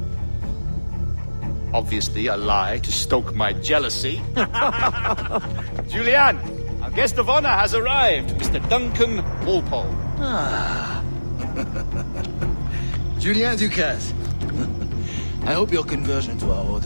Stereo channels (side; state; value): both; inverted; correlation -1.00